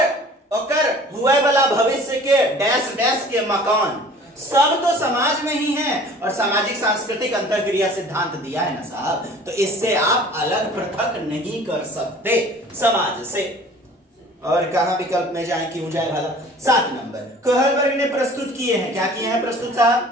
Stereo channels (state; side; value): normal; both; correlation 0.47